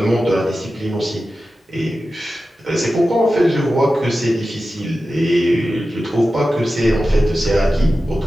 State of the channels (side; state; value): both; normal; correlation 0.93